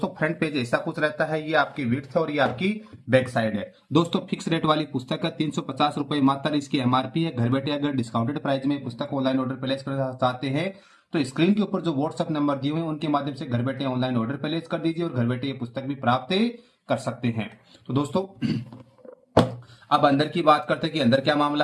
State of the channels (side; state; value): both; identical; correlation 1.00